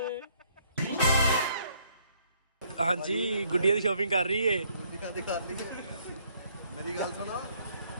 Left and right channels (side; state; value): both; inverted; correlation -0.67